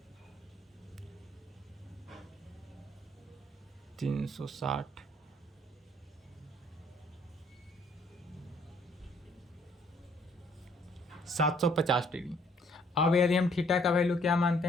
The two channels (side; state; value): both; normal; correlation 0.63